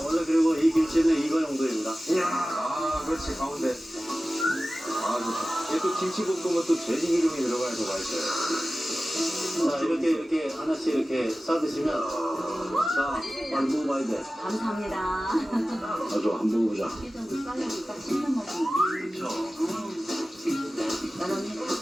원래 그리고 이 김치는 이거 정도입니다. 이야, 아, 그렇지, 가운데. 아, 좋다. 얘 또 김치볶음은 또 돼지 기름이 들어가서 맛있어요. 자, 이렇게 하나씩 이렇게 싸드시면, 자, 빨리 먹어봐야 돼. 감사합니다. 아주 한번 먹어보자. 쌀국수 딱 씹는 먹으면. 그렇죠. 난 언니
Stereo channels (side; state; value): both; normal; correlation 0.96